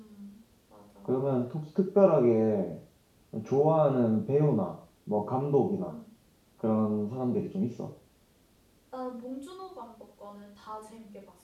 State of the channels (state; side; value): identical; both; correlation 1.00